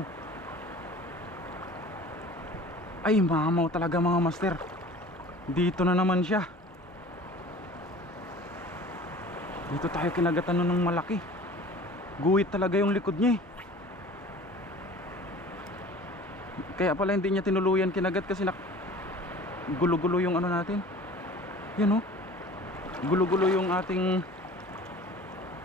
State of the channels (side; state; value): both; normal; correlation 0.43